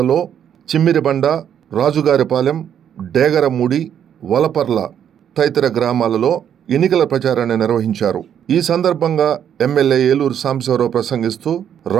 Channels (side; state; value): left; quieter; 9.2 dB